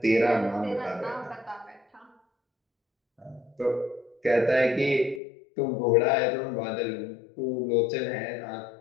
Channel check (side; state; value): right; drops out; at 5.2 s